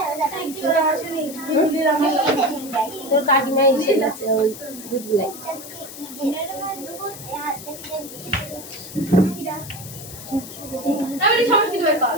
তোর কাকিমা এসে গেছে ওই দুধগুলাই।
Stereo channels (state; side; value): noise; left; hiss, 13 dB below the sound